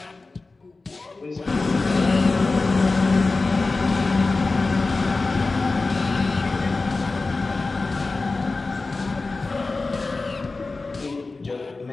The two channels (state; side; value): quieter; right; 3.6 dB